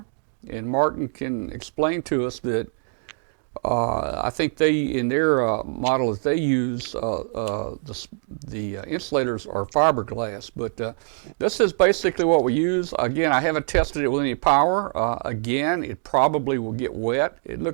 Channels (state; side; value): silent; left; 63 dB below the other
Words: and Martin can explain to us that I think in their model that they use, the insulators are fiberglass. But this is basically what we use. Again, I haven't tested it with any power. Again, it probably will get wet. It